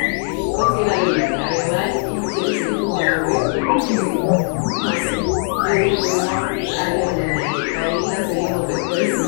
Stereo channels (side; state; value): right; quieter; 37.2 dB